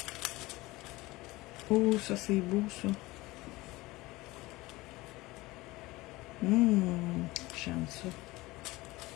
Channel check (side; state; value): right; quieter; 20.4 dB